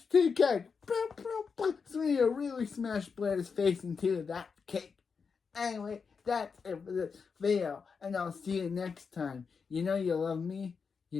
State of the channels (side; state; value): right; quieter; 5.5 dB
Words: the cake. Serena really smashed Blair's face into that cake. Anyway, that's it for this video, and I'll see you next time. You know you love me.